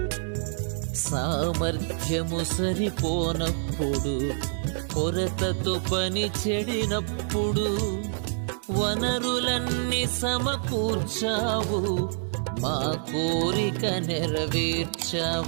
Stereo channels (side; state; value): left; silent; digital silence